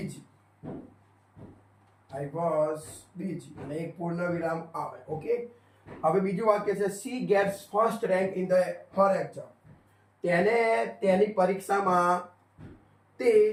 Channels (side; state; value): both; identical; correlation 1.00